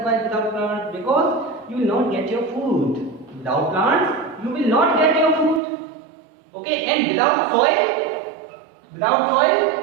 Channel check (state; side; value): drops out; left; at 5.6 s